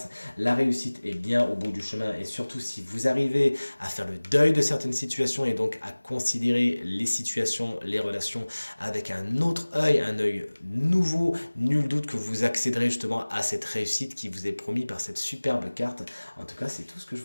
La réussite est bien au bout du chemin, et surtout si vous arrivez à faire le deuil de certaines situations et donc à considérer les situations, les relations avec un autre œil, un œil nouveau, nul doute que vous accéderez justement à cette réussite qui vous est promise par cette superbe carte. En tout cas, c'est tout ce que je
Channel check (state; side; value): inverted; both; correlation -1.00